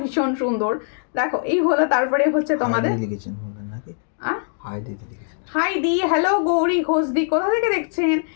ভীষণ সুন্দর। দেখো এই হলো, তারপরে হচ্ছে তোমাদের হাই দি, হ্যালো গৌরী ঘোষদি, কোথা থেকে দেখছেন?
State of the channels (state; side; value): silent; right; digital silence